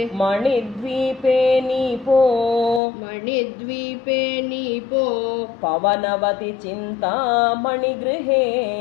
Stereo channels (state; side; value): drops out; right; at 2.8 s